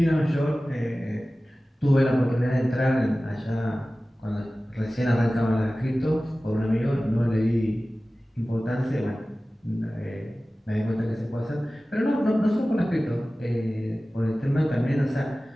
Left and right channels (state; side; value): normal; both; correlation 0.96